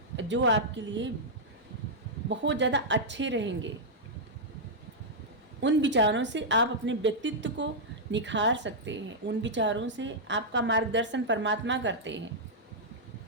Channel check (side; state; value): both; normal; correlation -0.07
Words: जो आपके लिए बहुत ज़्यादा अच्छे रहेंगे। उन विचारों से आप अपने व्यक्तित्व को निखार सकते हैं, उन विचारों से आपका मार्गदर्शन परमात्मा करते हैं।